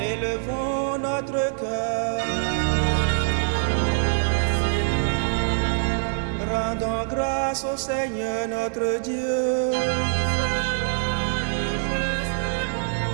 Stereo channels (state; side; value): silent; left; 62 dB below the other